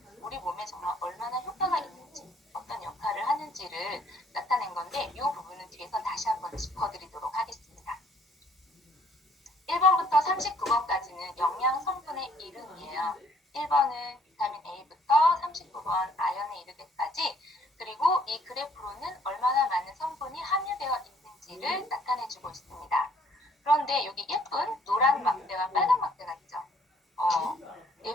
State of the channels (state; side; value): normal; both; correlation 0.62